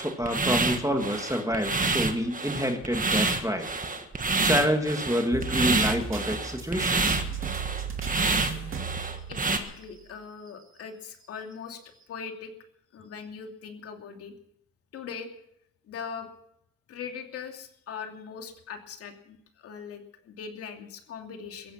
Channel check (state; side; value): normal; both; correlation 0.41